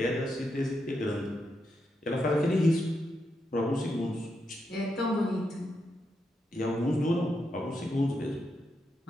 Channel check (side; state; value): both; normal; correlation 0.84